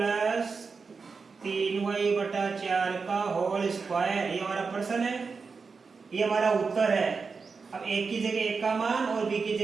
3y बटा 4 का होल स्क्वायर, ये हमारा प्रश्न है, ये हमारा उत्तर है। अब एक की जगह एक का मान और b की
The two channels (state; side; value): quieter; left; 4.9 dB